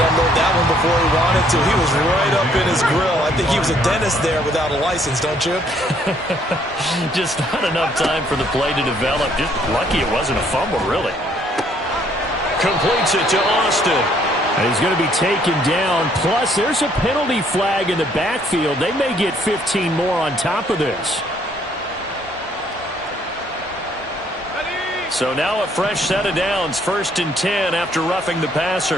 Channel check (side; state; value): both; normal; correlation 0.65